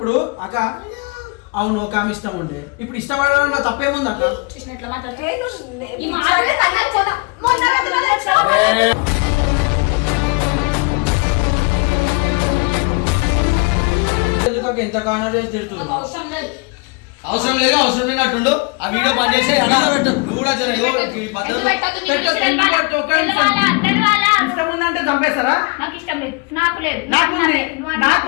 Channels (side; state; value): right; quieter; 30.3 dB